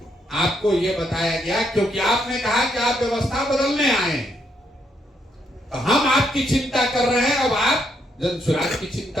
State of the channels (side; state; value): both; normal; correlation 0.75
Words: आपको ये बताया गया, क्योंकि आपने कहा कि आप व्यवस्था बदलने आए हैं, तो हम आपकी चिंता कर रहे हैं, अब आप जनसुराज की